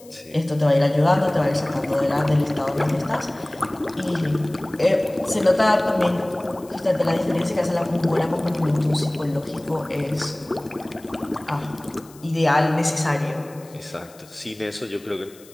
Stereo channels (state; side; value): noise; left; hiss, 24 dB below the sound